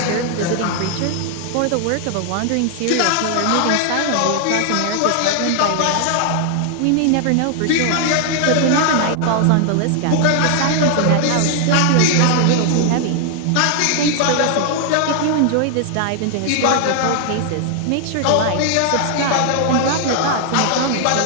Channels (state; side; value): different; both; correlation 0.00